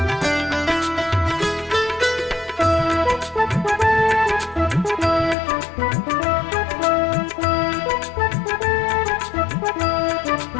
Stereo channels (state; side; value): drops out; right; at 5.4 s